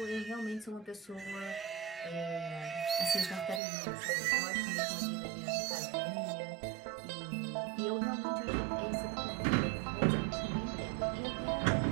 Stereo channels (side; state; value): left; drops out; at 3.6 s